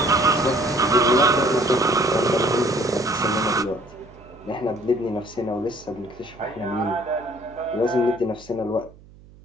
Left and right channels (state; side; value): noise; right; hum, 23 dB below the sound